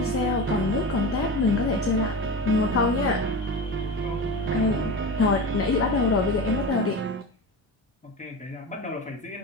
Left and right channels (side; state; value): both; normal; correlation 0.27